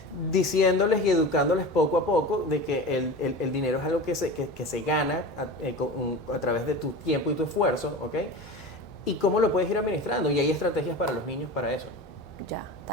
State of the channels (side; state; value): both; normal; correlation 0.31